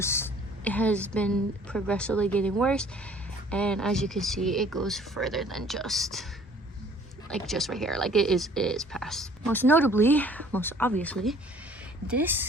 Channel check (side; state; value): both; normal; correlation 0.54